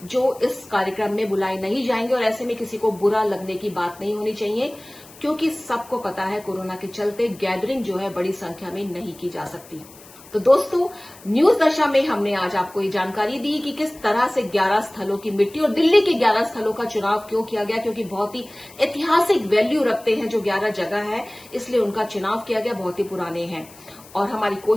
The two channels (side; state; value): left; noise; hiss, 22 dB below the sound